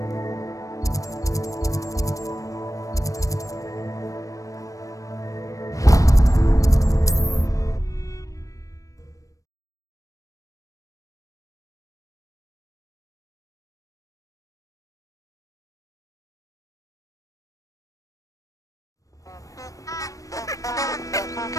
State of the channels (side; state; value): right; late; 0.16 ms